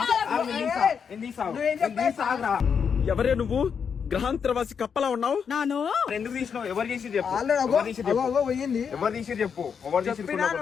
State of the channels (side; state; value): right; quieter; 6.8 dB